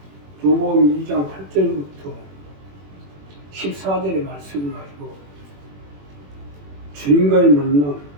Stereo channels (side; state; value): left; late; 21 ms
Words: 요한복음 2장 8절부터 14절의 말씀을 가지고 주님과의 만남,